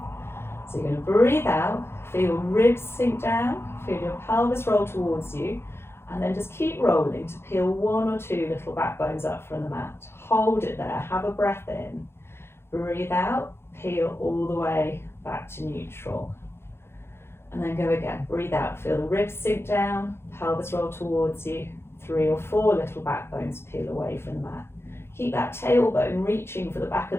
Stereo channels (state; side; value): late; right; 0.12 ms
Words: So you're going to breathe out, feel your ribs sink down, feel your pelvis roll towards you, and then just keep rolling to peel one or two little back bones up from the mat. Hold it there, have a breath in, breathe out, peel all the way back to neutral. And then go again, breathe out, feel the ribs sink down, pelvis roll towards you, 3 or 4 little back bones peel away from the mat. Keep that tailbone reaching for the back